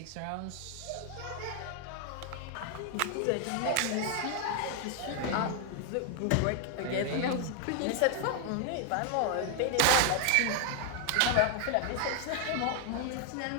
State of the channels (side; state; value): both; different; correlation 0.00